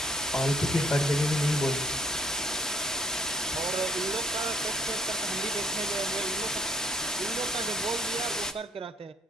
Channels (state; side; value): normal; both; correlation 0.60